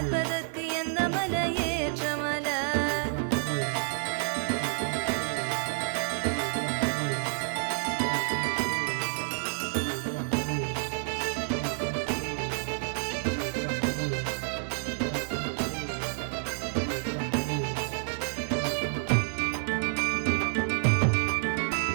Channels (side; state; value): left; silent; digital silence